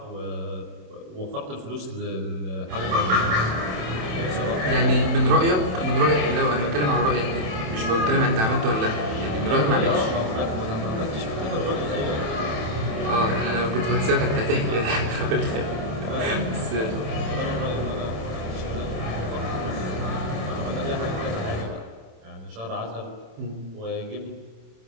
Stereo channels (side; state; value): left; late; 27 ms